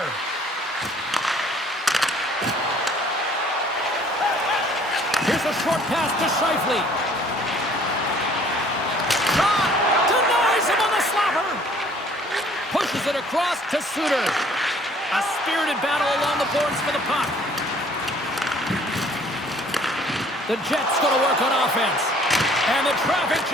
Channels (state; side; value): normal; both; correlation 0.57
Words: Here's a short pass to Scheifele. Shot! Denies him on the slapper. Pushes it across to Suter. A spirited battle along the boards for the puck. The Jets going to work on offense. And the traffic